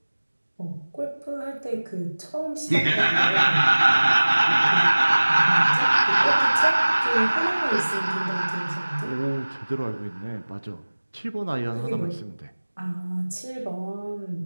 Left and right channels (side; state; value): both; inverted; correlation -1.00